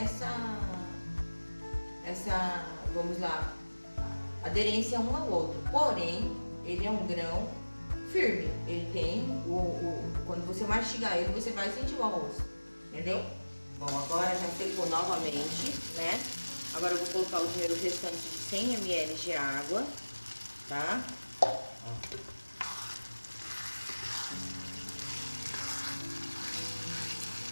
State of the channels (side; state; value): both; inverted; correlation -1.00